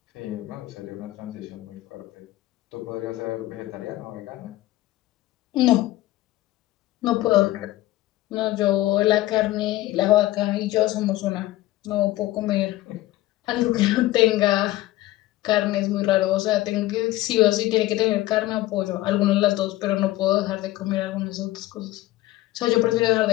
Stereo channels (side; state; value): right; quieter; 16.7 dB